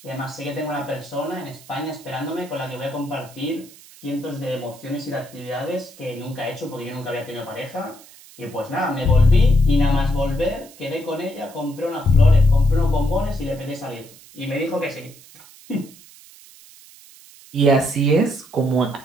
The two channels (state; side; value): noise; right; hiss, 22 dB below the sound